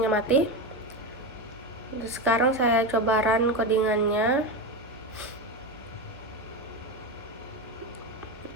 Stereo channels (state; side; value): normal; both; correlation 0.17